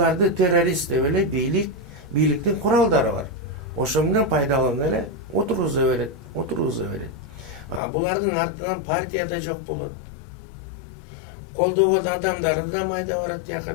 террорист деп эле бийликтин куралдары бар. Ошо менен пайдаланып эле отургуза берет. Булардын артынан партия да жок болот. Колдогон адамдары да майда барат, тияка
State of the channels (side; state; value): right; drops out; at 7.8 s